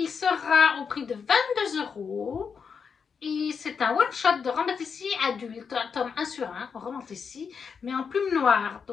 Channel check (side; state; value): right; quieter; 6.1 dB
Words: sera au prix de 22 €. Et c'est un one-shot de Romantici adulte, tome 1 sur 1, Romantici, mais en plume noire,